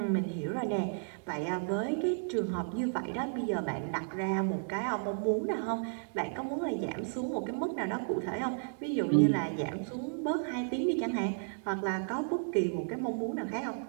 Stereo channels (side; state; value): left; silent; digital silence